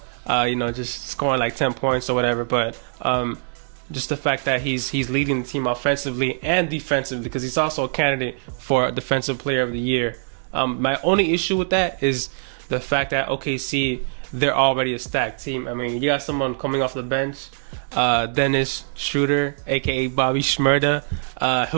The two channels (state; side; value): silent; left; digital silence